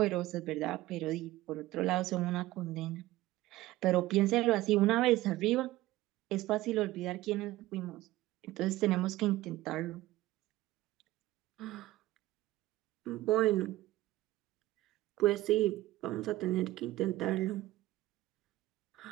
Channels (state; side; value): quieter; left; 17.0 dB